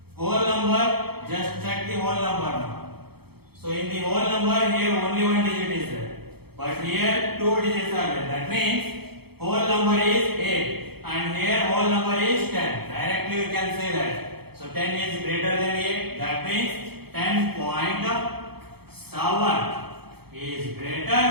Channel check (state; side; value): late; left; 0.96 ms